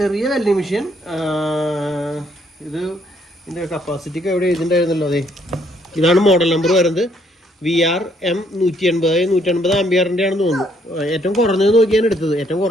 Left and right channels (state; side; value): normal; both; correlation 0.68